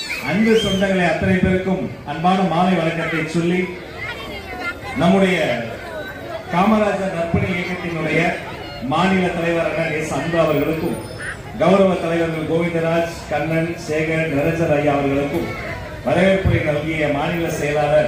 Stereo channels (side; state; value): both; identical; correlation 1.00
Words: அன்பு சொந்தங்களை அத்தனை பேருக்கும் அன்பான மாலை வணக்கத்தை சொல்லி, நம்முடைய காமராஜர் நற்பணி இயக்கத்தினுடைய மாநில தலைவர் எஸ் அன்பு அவர்களுக்கும், கௌரவ தலைவர்கள் கோவிந்தராஜ், கண்ணன், சேகர், நிரஞ்சன் ஐயா அவர்களுக்கும், வரவேற்புரை நல்கிய மாநில